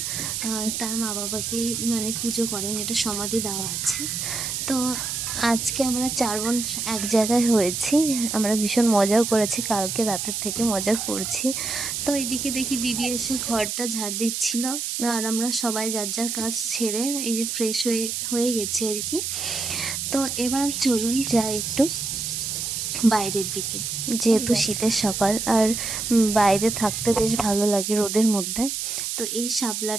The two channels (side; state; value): right; noise; hiss, 3 dB below the sound